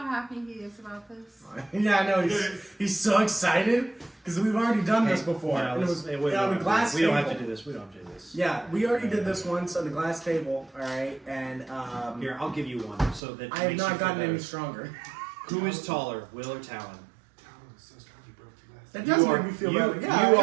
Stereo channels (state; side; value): drops out; left; at 13.2 s